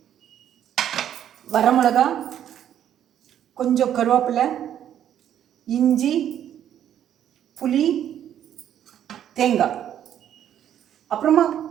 வரமிளகா, கொஞ்சம் கருவேப்பிலை, இஞ்சி, புளி, தேங்காய், அப்புறமா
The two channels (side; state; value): left; quieter; 10.3 dB